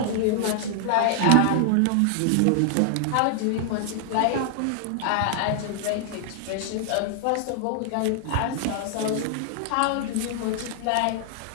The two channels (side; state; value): both; different; correlation -0.01